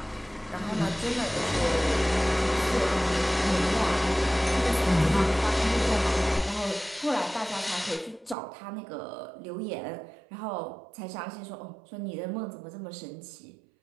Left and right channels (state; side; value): drops out; left; at 8.3 s